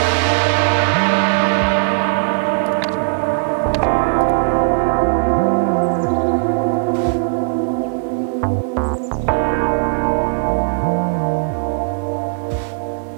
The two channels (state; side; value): silent; left; digital silence